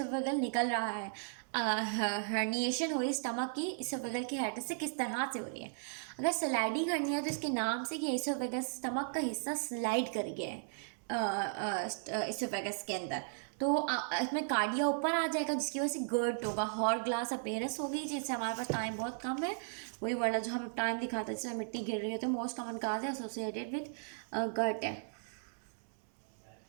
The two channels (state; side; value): silent; left; digital silence